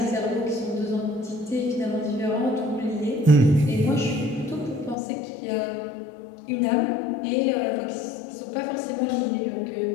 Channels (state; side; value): drops out; right; at 5.0 s